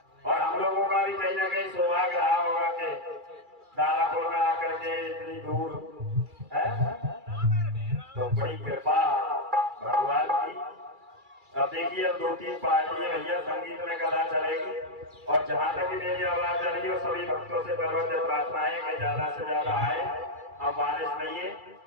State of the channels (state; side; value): late; left; 2.3 ms